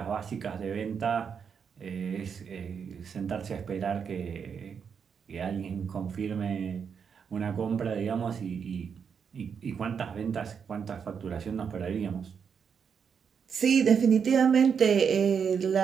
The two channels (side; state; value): left; quieter; 6.8 dB